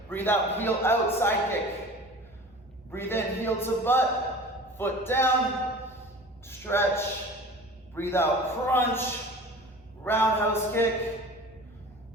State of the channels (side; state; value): both; normal; correlation 0.40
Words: Breathe out, heel out, side kick. Breathe in, heel to butt, foot down, stretch. Breathe out, crunch, roundhouse kick.